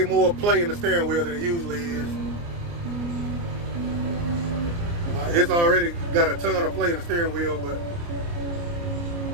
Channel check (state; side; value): late; left; 29 ms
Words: more play in the steering wheel than it usually is. It's already got a ton of play in the steering wheel, but